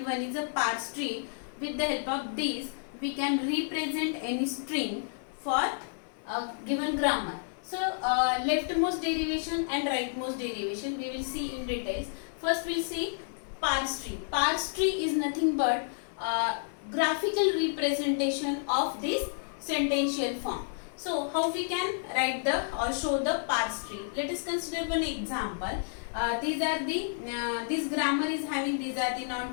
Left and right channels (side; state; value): right; silent; 57 dB below the other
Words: one is a parse tree. With the help of these, we can represent any string for a given grammar. So, leftmost derivation and rightmost derivation we will see in details. First, we will see parse tree. Parse tree is nothing but graphical representation of this sentential form. So, how we can write the or show the parse tree? Let us consider one example. These are the this grammar is having, these are the